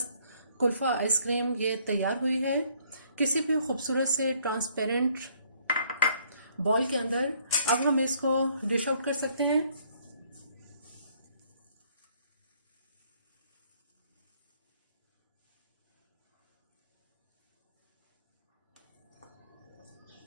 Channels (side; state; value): both; inverted; correlation -0.64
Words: कुल्फ़ा आइसक्रीम ये तैयार हुई है किसी भी खूबसूरत से ट्रांसपेरेंट बॉल के अंदर। अब हम इसको डिश आउट कर सकते हैं।